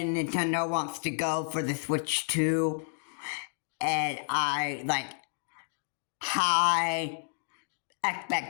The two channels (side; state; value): right; silent; digital silence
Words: Nintendo wants to go for the Switch 2, and I like high